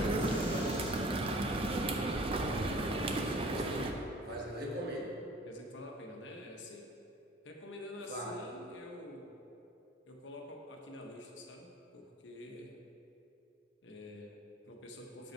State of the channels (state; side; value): normal; both; correlation 0.49